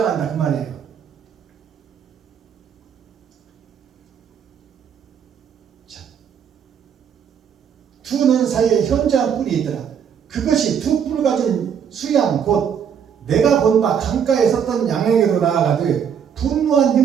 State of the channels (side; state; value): left; quieter; 7.8 dB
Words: 그 말이에요. 두 눈 사이에 현저한 뿔이 있더라. 그것이 두 뿔 가진 수양 곧 내가 본 바 강가에 섰던 양에게로 나아가되 분노한